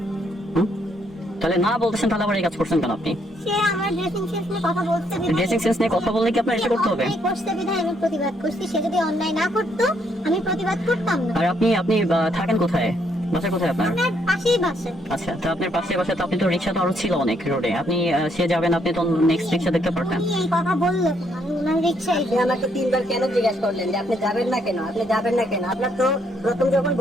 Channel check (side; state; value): both; normal; correlation 0.72